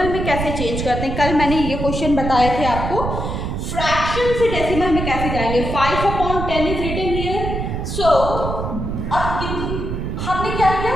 में कैसे चेंज करते हैं. कल मैंने ये क्वेश्चन बताए थे आपको, फ्रैक्शन से डेसिमल में कैसे जाएंगे. 5/10 इज रिटन हियर. सो अब हमने क्या किया,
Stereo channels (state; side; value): noise; right; rumble, 4 dB below the sound